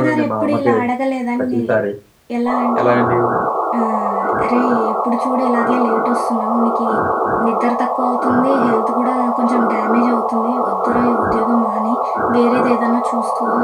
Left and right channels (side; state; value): both; identical; correlation 1.00